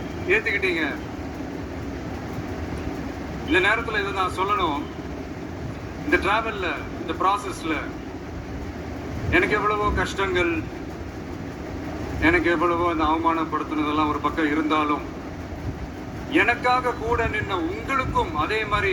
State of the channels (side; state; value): both; identical; correlation 1.00